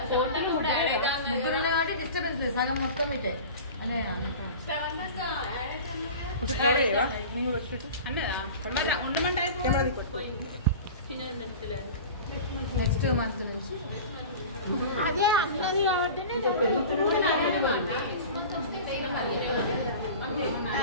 ముగ్గురు ఉన్నారు కాబట్టి డిస్టర్బెన్స్ లేదు. సగం మొత్తం ఇటే అదే ఒకటి కవర్ చేయవా? నేను కూడా వచ్చి అన్నదా ఉండమంటే కెమెరా తీసుకో. నెక్స్ట్ మంత్ నుంచి అదే అన్నది కాబట్టి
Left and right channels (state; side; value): inverted; both; correlation -0.36